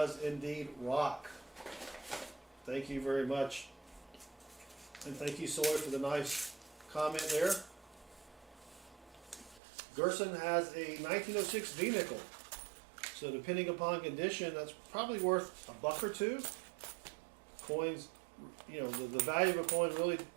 indeed rock. Thank you very much. And thank you, Soy, for the nice comment there. Gerson has a 1906 V-nickel. So depending upon condition, that's probably worth $1 or $2. Coins, you know, the value of a coin really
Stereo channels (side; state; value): left; drops out; at 9.6 s